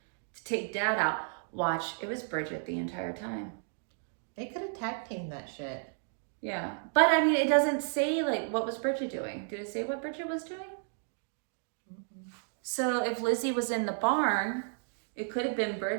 to take Dad out, watch, it was Bridget the entire time. They could have tag teamed that shit. Yeah, but I mean, it doesn't say like what was Bridget doing. Did it say what Bridget was doing? Mm-hmm. So if Lizzie was in the barn, it could have been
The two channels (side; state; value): left; silent; 56 dB below the other